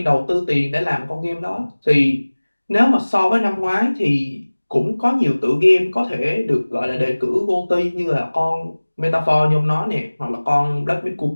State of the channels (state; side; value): inverted; both; correlation -1.00